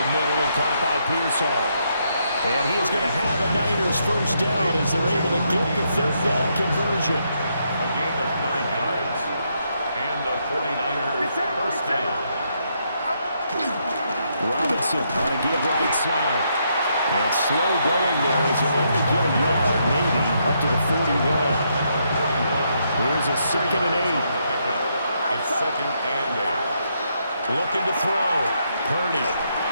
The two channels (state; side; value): inverted; both; correlation -0.77